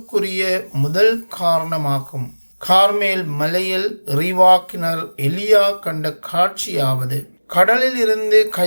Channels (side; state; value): both; inverted; correlation -1.00